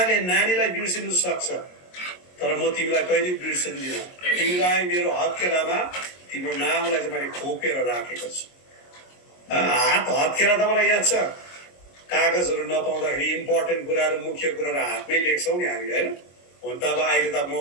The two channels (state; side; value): late; right; 22 ms